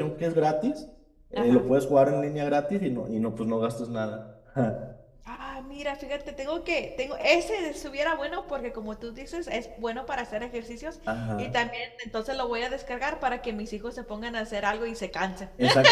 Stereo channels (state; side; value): identical; both; correlation 1.00